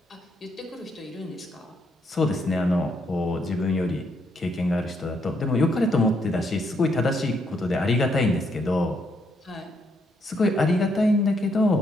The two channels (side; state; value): both; normal; correlation 0.75